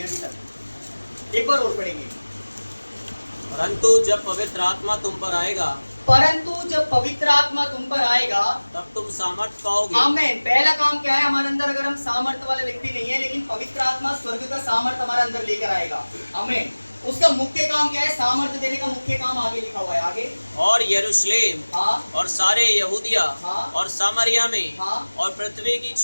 अभी तक। एक बार और पढ़ेंगे। परंतु जब पवित्र आत्मा तुम पर आएगा, परंतु जब पवित्र आत्मा तुम पर आएगा, तब तुम सामर्थ पाओगे। आमीन। पहला काम क्या है हमारे अंदर? अगर हम सामर्थ वाले व्यक्ति नहीं है, लेकिन पवित्र आत्मा स्वर्ग का सामर्थ हमारे अंदर लेकर आएगा। आमीन। उसका मुख्य काम क्या है? सामर्थ देने का मुख्य काम आगे लिखा हुआ है, आगे। और यरूशलेम और सारे यहूदिया और सामरिया में और पृथ्वी की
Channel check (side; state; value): both; inverted; correlation -1.00